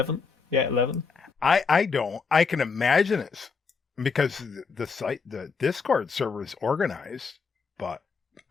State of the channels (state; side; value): quieter; right; 5.1 dB